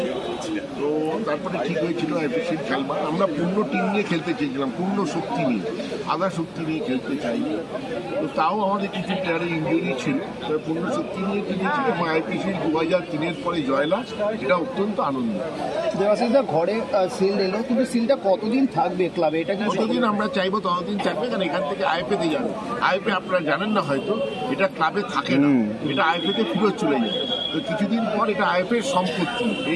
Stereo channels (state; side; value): identical; both; correlation 1.00